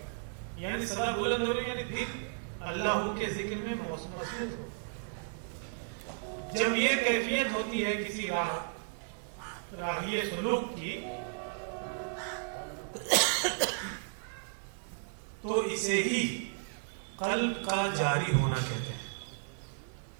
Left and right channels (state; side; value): silent; left; 55 dB below the other